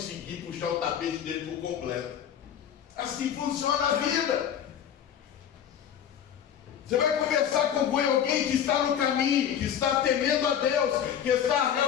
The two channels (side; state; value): right; quieter; 9.1 dB